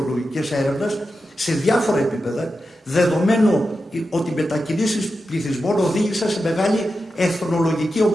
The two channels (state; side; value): normal; both; correlation 0.90